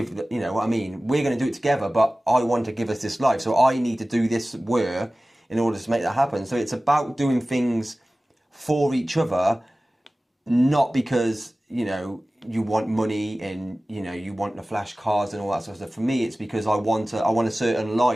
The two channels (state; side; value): normal; both; correlation 0.97